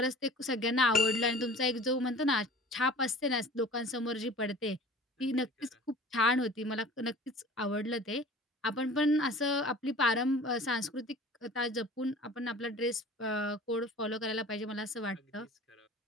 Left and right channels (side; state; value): both; normal; correlation 0.44